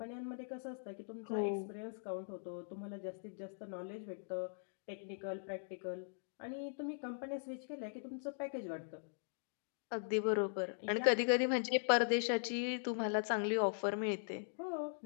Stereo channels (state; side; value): silent; right; digital silence